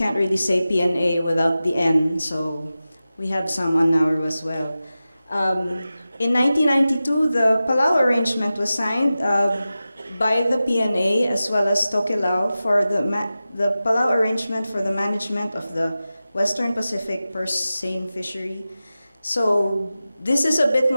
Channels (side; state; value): both; inverted; correlation -0.94